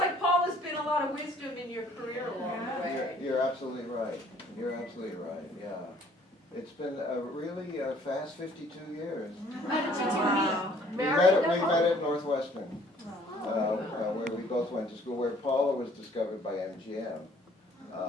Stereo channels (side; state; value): both; normal; correlation 0.58